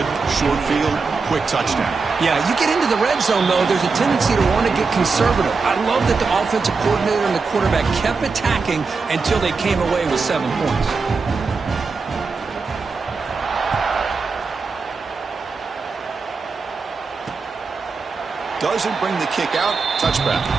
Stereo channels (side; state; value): left; quieter; 4.6 dB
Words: Short field, quick touchdown. Yeah, you get into the red zone, though, there's a tendency to want to get conservative. I love that the offensive coordinator and the quarterback kept attacking until they came away with 7 points. Doesn't bring the kick out. Touchback.